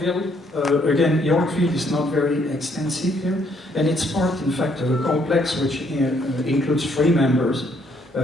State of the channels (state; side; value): normal; both; correlation 0.69